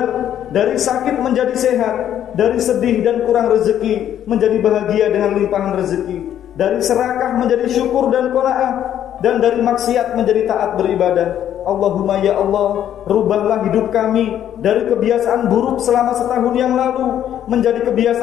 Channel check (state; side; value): quieter; right; 10.6 dB